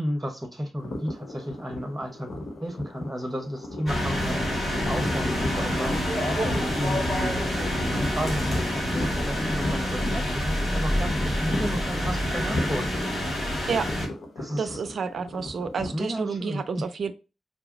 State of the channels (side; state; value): both; normal; correlation 0.88